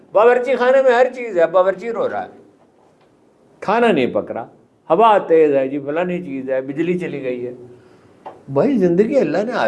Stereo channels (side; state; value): both; identical; correlation 1.00